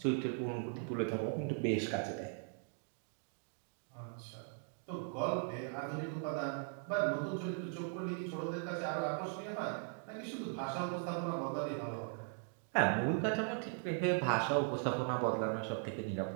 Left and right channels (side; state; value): left; silent; 52 dB below the other